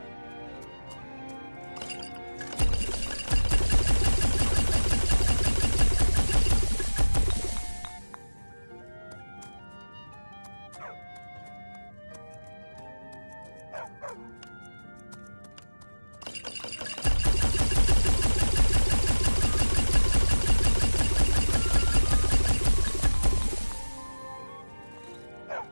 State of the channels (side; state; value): both; inverted; correlation -1.00